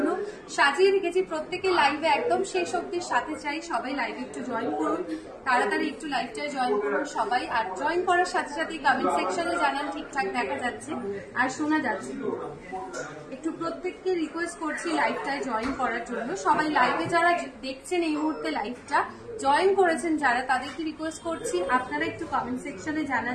সাজিয়ে রেখেছি। প্রত্যেকের লাইভে একদম শেষ অব্দির সাথে চাই সবাই লাইভে একটু জয়েন করুন, তাড়াতাড়ি একটু লাইভটায় জয়েন করুন সবাই। আর জয়েন করার সাথে সাথে কমেন্ট সেকশনে জানান ঠিকঠাক দেখা যাচ্ছে আর শোনা যাচ্ছে। একটু প্রত্যেককে রিকোয়েস্ট করছি লাইভটায় জয়েন করার জন্য। সবাই লাইভে যারা দেখছেন এই মুহূর্তে লাইভটা জয়েন করেছেন যারা, তাদেরকে রিকোয়েস্ট করছি আপনারা একটু কমেন্ট সেকশনে জানান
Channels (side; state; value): both; identical; correlation 1.00